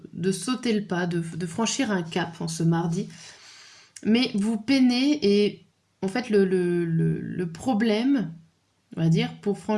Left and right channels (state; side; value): identical; both; correlation 1.00